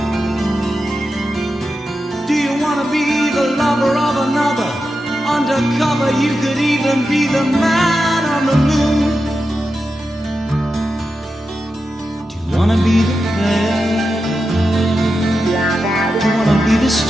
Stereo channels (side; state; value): both; normal; correlation 0.89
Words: Do you wanna be the lover of another? Undercover, you could even be the man on the moon. Do you wanna be the player? Do you wanna be the